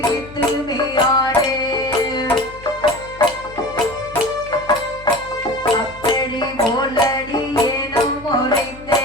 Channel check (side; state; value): left; noise; hum, 18 dB below the sound